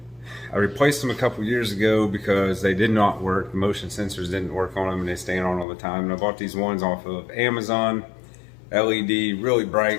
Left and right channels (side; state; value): right; drops out; at 5.7 s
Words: I replaced them a couple years ago because they did not work. The motion sensors didn't work on them and they stand on all the time. And I bought these ones off of Amazon, LED, really bright.